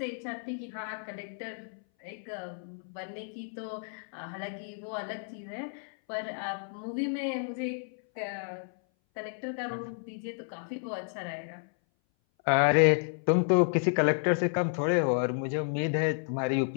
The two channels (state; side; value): silent; right; 57 dB below the other